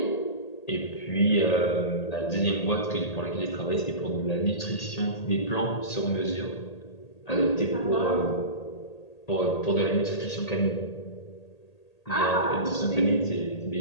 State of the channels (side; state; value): right; late; 1.8 ms